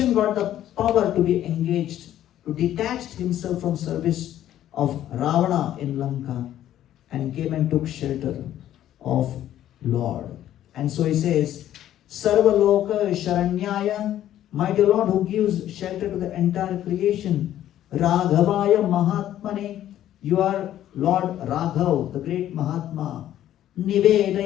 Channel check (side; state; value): right; quieter; 12.1 dB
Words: got the power to be engaged, to detach himself from service of Ravana in Lanka and came and took shelter of Lord. And so he says, Sarva Loka Sharanyaya, my dear Lord who gives shelter to the entire creation, Raghavaya Mahatmane, you are Lord Raghav, the great Mahatma,